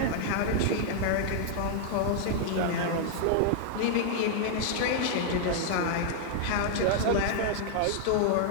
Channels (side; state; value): both; different; correlation 0.00